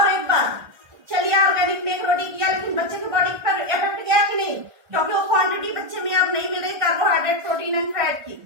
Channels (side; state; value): left; late; 1.3 ms